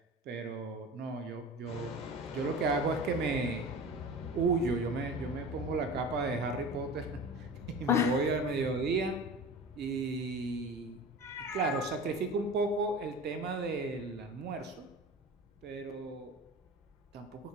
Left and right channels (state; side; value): normal; both; correlation 0.35